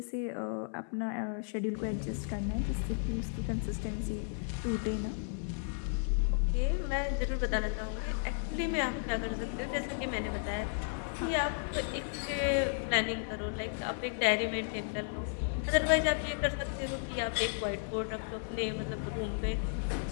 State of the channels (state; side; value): silent; right; 55 dB below the other